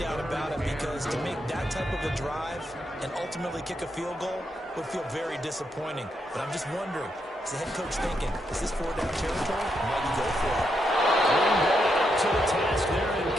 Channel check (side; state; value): both; normal; correlation 0.81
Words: about it, because to make that type of a drive and ultimately kick a field goal would feel very disappointing. But I'm just wondering, is the head coach thinking, is this 4-down territory? Might you go for it? Green Bay up to the task there in